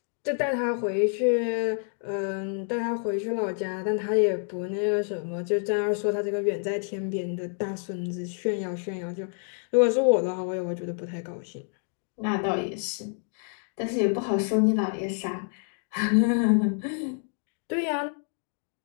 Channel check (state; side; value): silent; right; 55 dB below the other